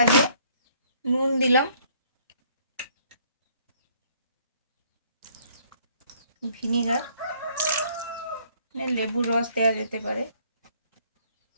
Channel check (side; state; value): both; inverted; correlation -0.63